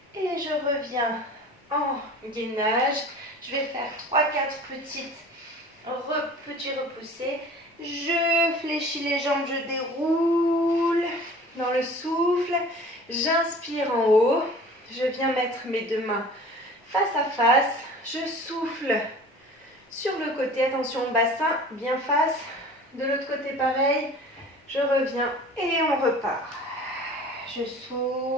Et je reviens en gainage. Je vais faire 3-4 petits repoussés. Je fléchis les jambes, je déroule dans le souffle. J'inspire en haut. Je viens mettre mes deux mains face à face. Je souffle sur le côté. Attention, bassin bien face. De l'autre côté, pareil. Je reviens et on repart. Je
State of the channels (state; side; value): normal; both; correlation 0.43